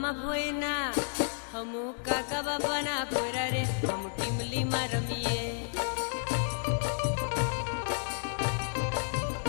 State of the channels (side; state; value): right; silent; digital silence